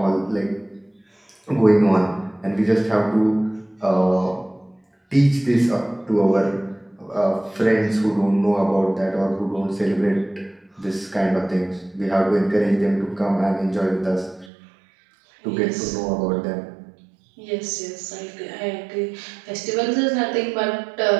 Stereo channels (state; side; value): drops out; left; at 14.5 s